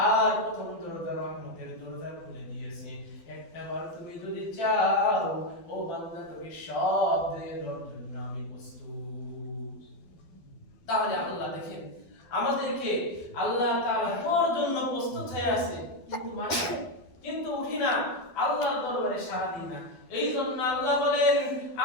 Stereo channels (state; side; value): late; right; 12 ms